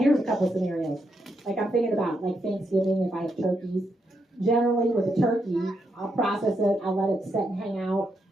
a couple of scenarios. Like I'm thinking about like Thanksgiving, if I have turkeys. Generally with a turkey, I'll process it, I'll let it sit and hang out.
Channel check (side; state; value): both; normal; correlation 0.81